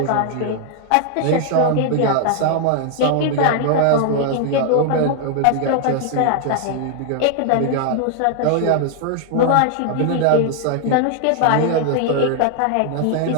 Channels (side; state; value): both; different; correlation 0.00